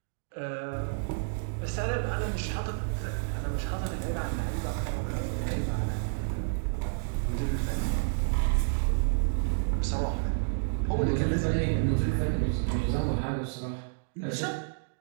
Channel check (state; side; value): silent; left; digital silence